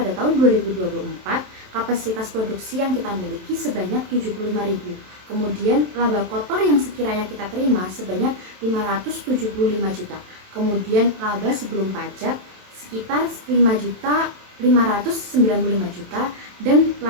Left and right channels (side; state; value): left; late; 27 ms